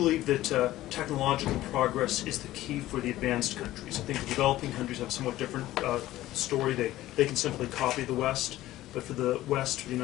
that technological progress is the key for the advanced countries. I think the developing countries have a somewhat different story. They can simply copy the West, but for the West, for the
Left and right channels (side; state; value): right; quieter; 15.4 dB